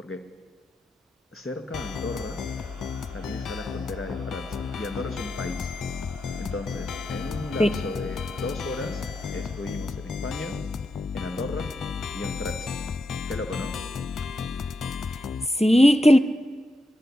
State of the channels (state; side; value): normal; both; correlation 0.86